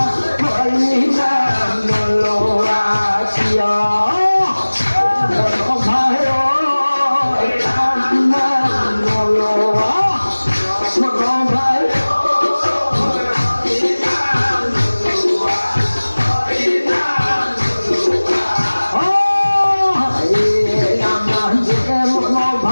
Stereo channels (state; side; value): inverted; both; correlation -1.00